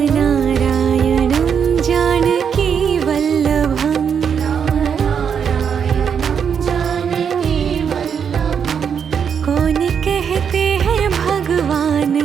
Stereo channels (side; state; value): left; quieter; 7.3 dB